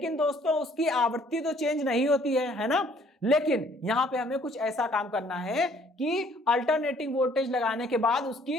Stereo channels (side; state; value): both; normal; correlation 0.60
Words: दोस्तों उसकी आवृत्ति तो चेंज नहीं होती है ना। लेकिन यहां पे हमें कुछ ऐसा काम करना है कि अल्टरनेटिंग वोल्टेज लगाने के बाद